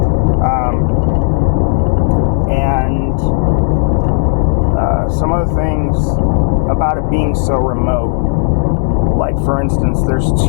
And some of the things about it being so remote, like for instance, there's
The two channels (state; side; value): silent; right; digital silence